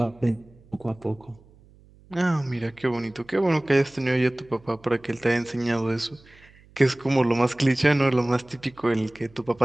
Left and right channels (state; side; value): noise; right; hum, 27 dB below the sound